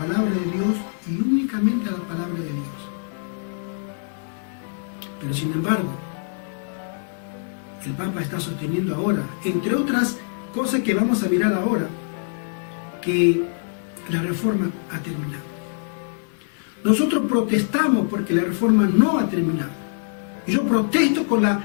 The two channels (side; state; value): right; silent; 63 dB below the other